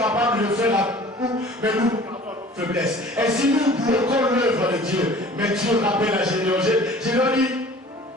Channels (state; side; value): normal; both; correlation 0.47